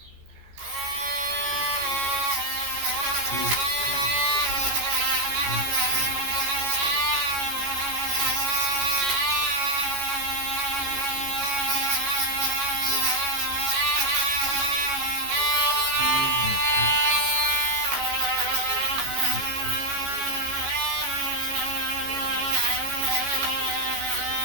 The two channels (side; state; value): left; late; 14 ms